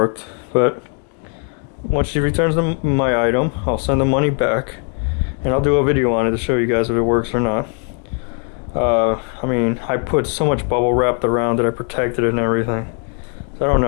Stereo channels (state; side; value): quieter; right; 39.1 dB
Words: But once she returns my item, I'll send the money back, and I'll do a video on it to show you guys if it works or not. I mean, I put so much bubble wrap around it, I protected it and everything. So I don't